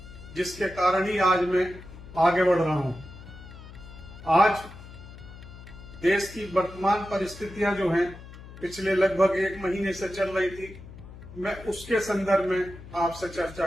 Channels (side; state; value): left; noise; hum, 16 dB below the sound